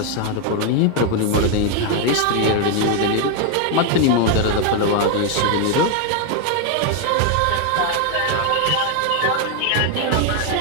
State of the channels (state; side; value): different; both; correlation 0.01